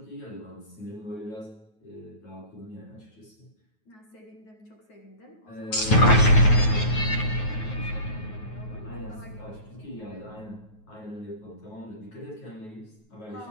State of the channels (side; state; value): right; late; 9.4 ms